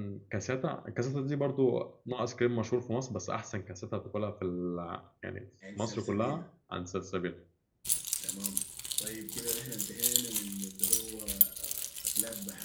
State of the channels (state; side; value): identical; both; correlation 1.00